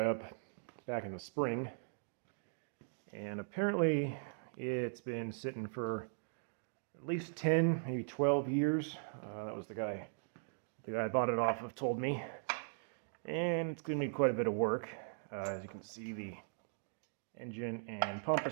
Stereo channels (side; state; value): left; silent; digital silence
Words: up back in the spring, and apparently it's been sitting for at least 10, maybe 12 years. That was the guy I bought it off of told me. And it's going to need quite a bit of work. As you can see, the engine and pump